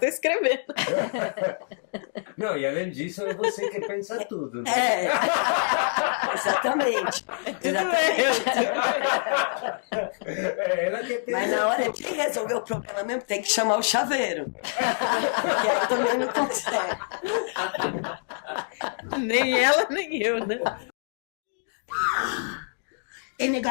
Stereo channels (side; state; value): right; silent; digital silence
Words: escrevendo. Não, e além disso, é você que pensa tudo. Né? Exatamente. Exatamente. É ela que pensa Mas na hora tudo. de resolver o problema mesmo, tem que chamar o chaveiro. Porque aí também não consegue. Nem ela, nem eu, né? Tem